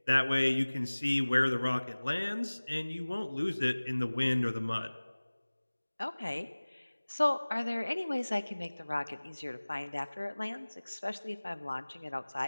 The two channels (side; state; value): both; inverted; correlation -1.00